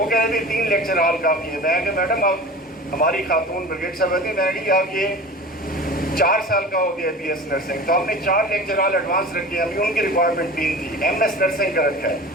کہہ رہے تھے 3 لیکچر ہال کافی ہے. میں کہ میڈم آپ ہماری خاتون بریگیڈ صاحب ہوتی میڈی آپ یہ 4 سال کا ہو گیا BS نرسنگ، تو ہم نے 4 لیکچر ہال ایڈوانس رکھے. ابھی ان کی ریکوائرمنٹ 3 تھی. MS نرسنگ کا رکھا ہے.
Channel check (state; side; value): normal; both; correlation 0.36